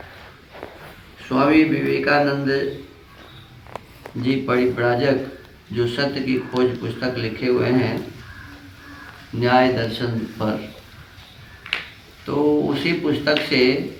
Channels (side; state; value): both; identical; correlation 1.00